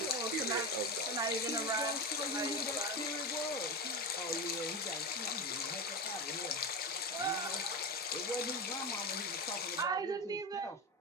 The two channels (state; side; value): normal; both; correlation 0.19